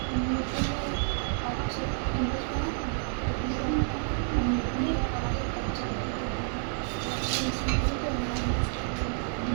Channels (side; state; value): left; silent; 58 dB below the other